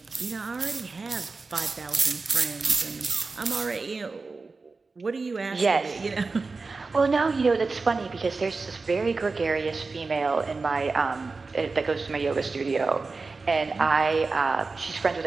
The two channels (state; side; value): quieter; left; 4.0 dB